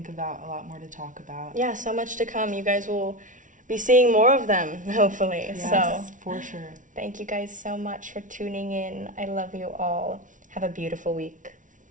about, a lot more to talk about. Yeah, so much to come. You guys will be seeing more of them, hopefully. Yes, So for sure. thank you guys so much for tuning in. I love you all. Have a beautiful week.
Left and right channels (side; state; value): left; late; 0.37 ms